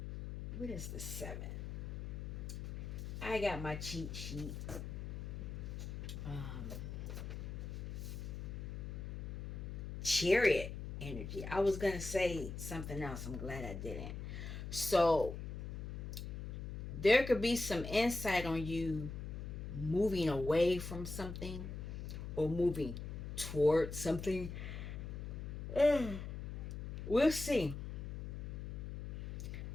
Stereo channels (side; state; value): left; noise; hum, 6 dB below the sound